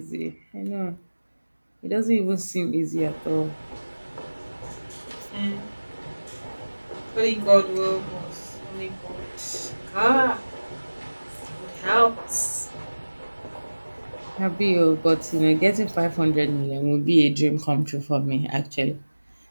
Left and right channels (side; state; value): both; inverted; correlation -1.00